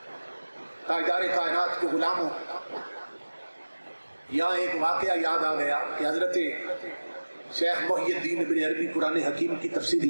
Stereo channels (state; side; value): inverted; both; correlation -1.00